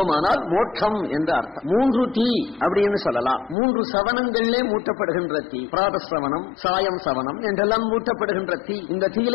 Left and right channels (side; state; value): right; drops out; at 3.6 s